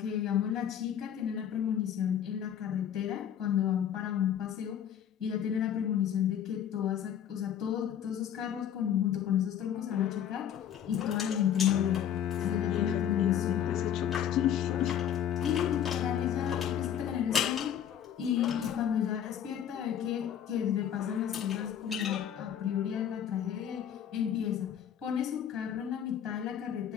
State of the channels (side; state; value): right; quieter; 9.5 dB